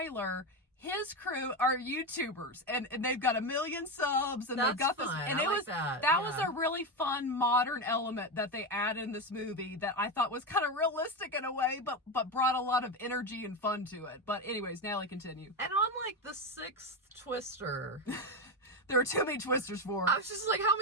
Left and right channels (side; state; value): both; normal; correlation 0.14